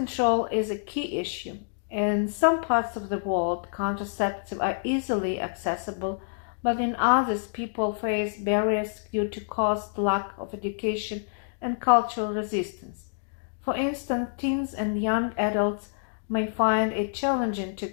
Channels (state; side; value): silent; right; digital silence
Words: is a key issue. In some parts of the world, contraceptives are easily accessible, but in others, people face barriers due to cost, lack of education, and cultural resistance. For instance, teens and young adults may find it challenging to